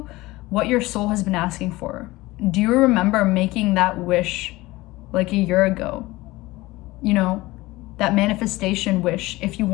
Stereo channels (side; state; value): right; quieter; 19.8 dB